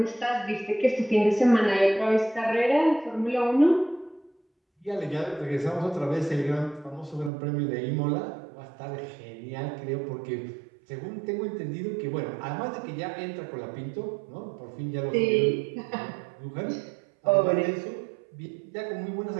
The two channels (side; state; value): left; drops out; at 7.3 s